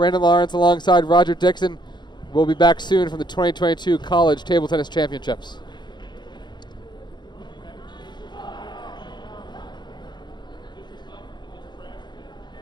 Lawrence alongside Roger Dixon. We'll be back soon from the 2022 College Table Tennis Championships.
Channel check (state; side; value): late; right; 0.21 ms